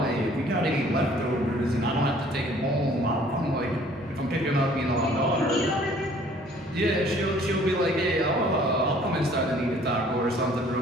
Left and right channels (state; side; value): normal; both; correlation 0.56